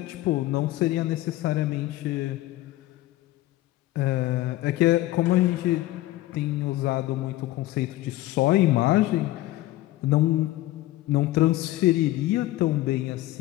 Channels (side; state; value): right; quieter; 16.6 dB